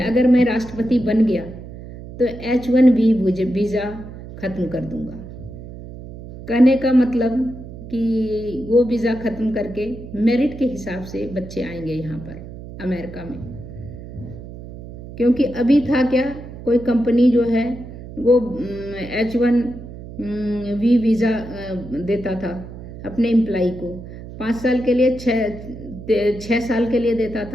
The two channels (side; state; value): right; noise; hum, 13 dB below the sound